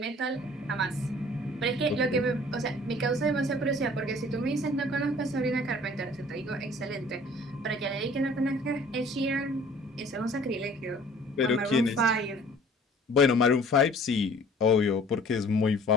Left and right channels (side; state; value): both; normal; correlation 0.51